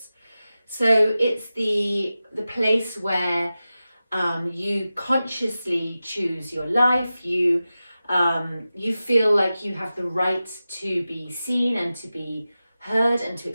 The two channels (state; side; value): inverted; both; correlation -0.94